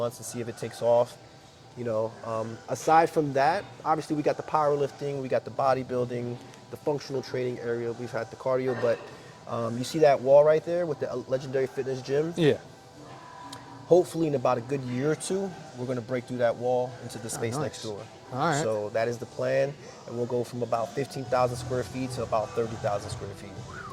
to see if it takes off. Aside from that, obviously we got the powerlifting, we got the bodybuilding, the functional training area. We've had the cardio, but you see that wall right there with the Legendary Fitness Gym. Yeah. Hopefully, in about a good year or two, we're going to break through that wall into the space nice. next door. All right. So that is the plan, and we'll go from about 15,000 square feet to about 30,000 square feet.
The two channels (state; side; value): identical; both; correlation 1.00